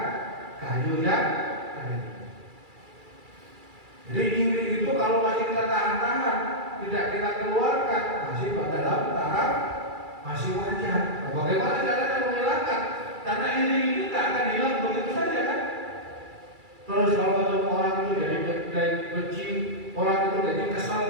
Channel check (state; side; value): late; left; 2.3 ms